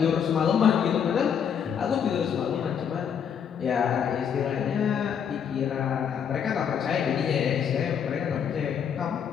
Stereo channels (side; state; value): right; quieter; 7.8 dB